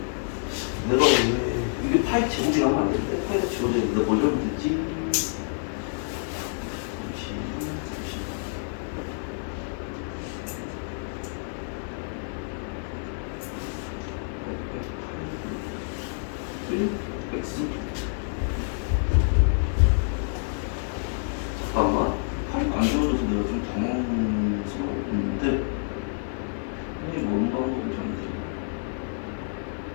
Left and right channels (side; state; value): right; silent; 60 dB below the other